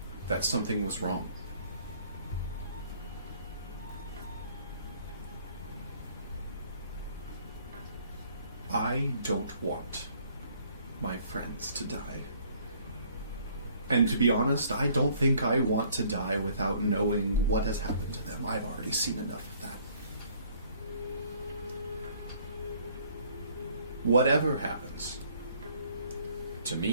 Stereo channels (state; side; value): inverted; both; correlation -0.60